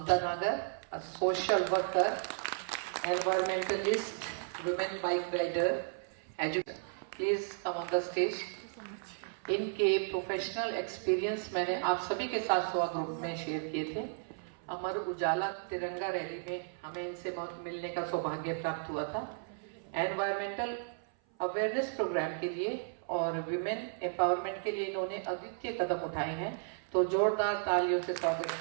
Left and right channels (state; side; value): silent; left; 55 dB below the other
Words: Nagar, a social worker, environmentalist, women bike rider, educator. Please come on the stage. इनके professional experience मैंने आप सभी के साथ स्वा ग्रुप में शेयर किए थे। अमर उजाला तिरंगा रैली में हमें इनसे मिलने का सौभाग्य प्राप्त हुआ था। एनवायरमेंटल अवेयरनेस प्रोग्राम के लिए और विमेन एम्पावरमेंट के लिए इन्होंने अद्वितीय कदम उठाए हैं, तो जोरदार तालियों से स्वागत